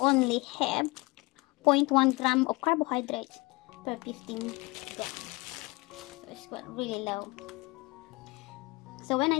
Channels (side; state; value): right; quieter; 24.3 dB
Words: have 0.1 gram of carbohydrates per 15 grams. So it's really low. So when